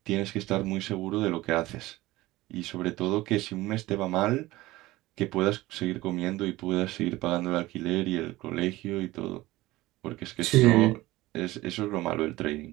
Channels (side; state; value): left; quieter; 18.4 dB